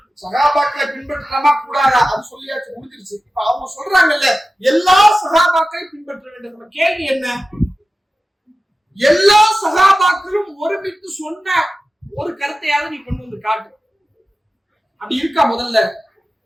சஹாபாக்களை பின்பற்றலாமா கூடாதா? அது சொல்லியாச்சு, முடிஞ்சிருச்சு. இப்ப அவங்க சொல்றாங்கல்ல, எல்லா சஹாபாக்களையும் பின்பற்ற வேண்டும். நம்ம கேள்வி என்ன? எல்லா சஹாபாக்களும் ஒருமித்து சொன்ன ஒரு கருத்தையாவது நீ கொண்டு வந்து காட்டு. அப்படி இருக்கா? முதல்ல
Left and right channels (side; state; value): both; normal; correlation 0.95